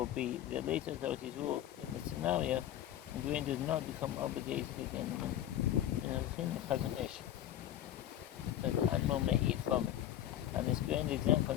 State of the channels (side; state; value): right; quieter; 11.7 dB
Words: The later authorities rule in the scenario, and grain does not become obligated again in the Chazon Ish, but the animal may eat from it, and this grain is exempt